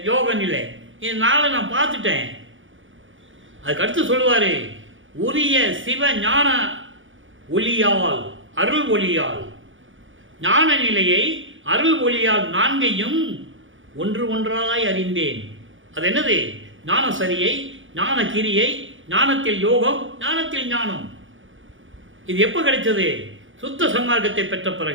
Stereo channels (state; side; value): late; left; 0.57 ms